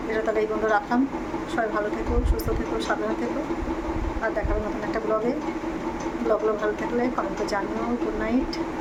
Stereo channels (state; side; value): identical; both; correlation 1.00